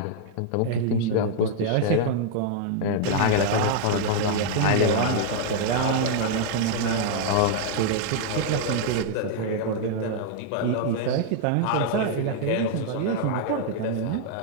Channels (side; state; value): both; different; correlation -0.01